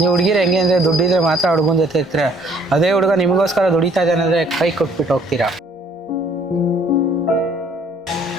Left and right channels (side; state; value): both; normal; correlation 0.60